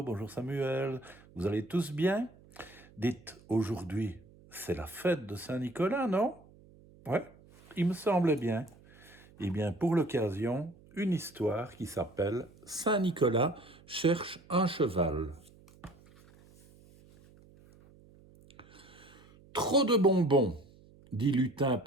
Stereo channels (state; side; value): noise; right; hum, 25 dB below the sound